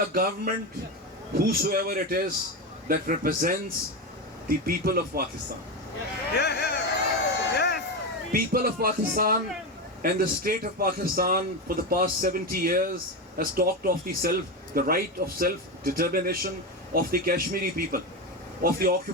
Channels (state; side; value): normal; both; correlation 0.16